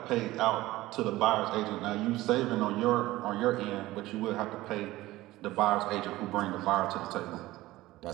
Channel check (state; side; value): quieter; left; 17.4 dB